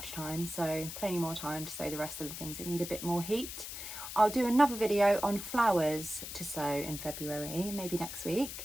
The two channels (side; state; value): left; noise; hiss, 8 dB below the sound